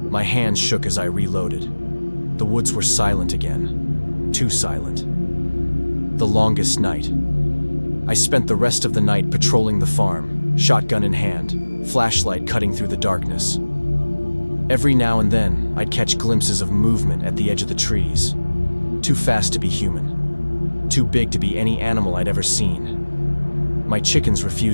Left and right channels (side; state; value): both; inverted; correlation -1.00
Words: My hands shook as I reloaded. The woods were silent again, too silent. The longest night. I spent the rest of the night patrolling the farm, shotgun in hand, flashlight cutting through the darkness. Every now and then, I'd catch glimpses of movement at the edge of the trees. Too fast to be human. Too big to be any animal I'd ever seen. My chickens